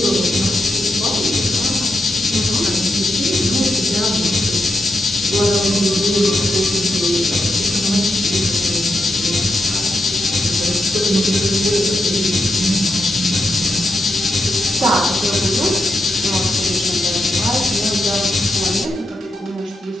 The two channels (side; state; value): both; normal; correlation 0.84